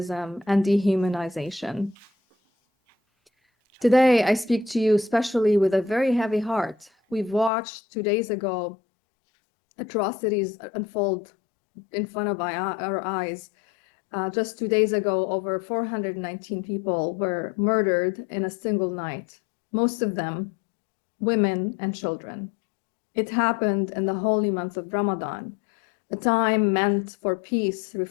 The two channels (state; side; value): drops out; right; at 7.5 s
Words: and dehumanization. Today, I speak to you especially with a very heavy heart. We've watched 2 days ago atrocities unfold in front of our eyes. Just 2 days ago, over 419 people were murdered in a single night, most of them women and children. It happened in the holy month of Ramadan, a time meant for peace,